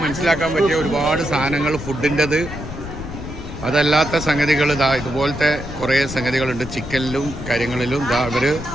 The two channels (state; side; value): noise; left; rumble, 9 dB below the sound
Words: മനസ്സിലാക്കാൻ പറ്റിയ ഒരുപാട് സാധനങ്ങൾ ഫുഡിൻ്റെത്. അതല്ലാത്ത സംഗതികൾ ഇതുപോലത്തെ കുറേ സംഗതികളുണ്ട്. ചിക്കനിലും കാര്യങ്ങളിലും